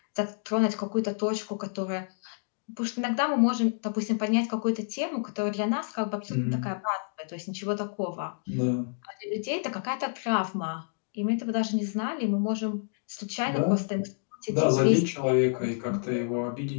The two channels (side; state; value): right; silent; digital silence